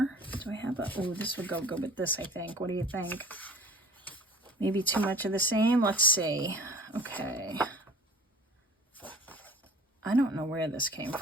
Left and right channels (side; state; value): both; normal; correlation 0.45